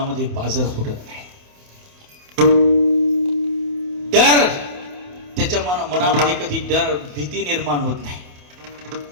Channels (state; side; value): late; left; 28 ms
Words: पाझर फुटत नाही. डर, त्याच्या मनामध्ये कधी भीती निर्माण होत नाही.